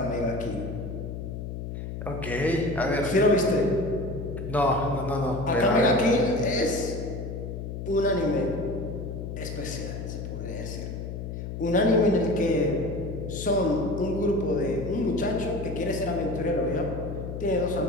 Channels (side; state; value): left; noise; hum, 6 dB below the sound